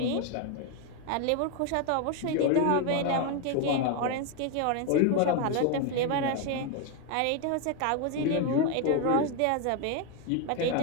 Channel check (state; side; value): different; both; correlation 0.01